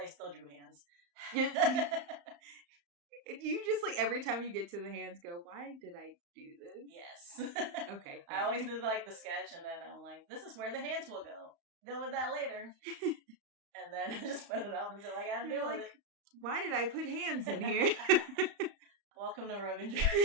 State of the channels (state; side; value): late; left; 35 ms